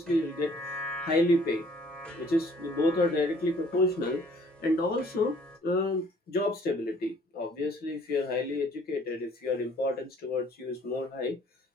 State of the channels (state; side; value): normal; both; correlation 0.58